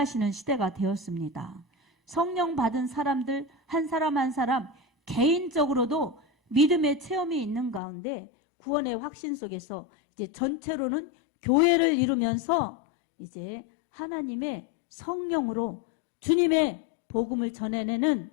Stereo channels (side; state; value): right; drops out; at 7.8 s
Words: 시대가 되었습니다. 성령 받은 사람들 한 사람 한 사람 개인적으로도 믿음의 체험이 있는 가운데 구원의 확신 속에서 이제 전체로는 교회를 이루면서 이제 하나님의 성령으로 주님의 복음을 전해내는